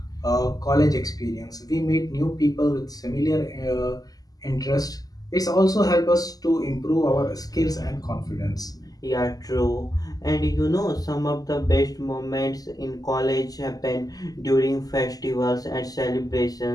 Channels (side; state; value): right; late; 0.18 ms